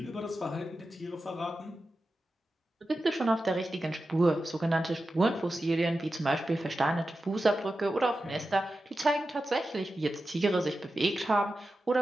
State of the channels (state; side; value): normal; both; correlation 0.92